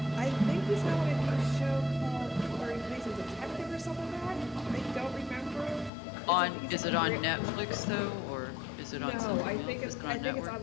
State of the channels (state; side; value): drops out; right; at 5.9 s